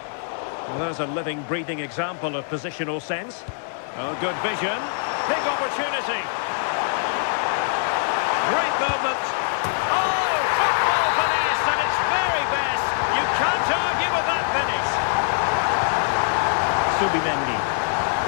Well, there's a living, breathing example of positional sense. Oh, good vision. Big opportunity. Great movement. Oh, football finesse at its very best. You can't argue with that finish. Subimendi.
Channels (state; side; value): silent; right; 63 dB below the other